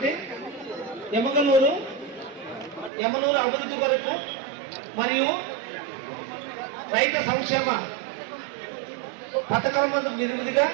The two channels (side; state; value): left; drops out; at 2.9 s